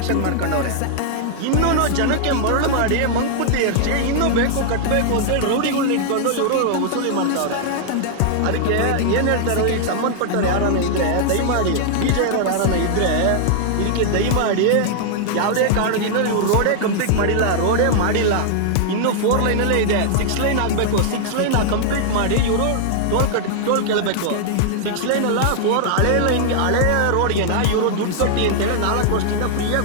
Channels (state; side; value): different; both; correlation -0.01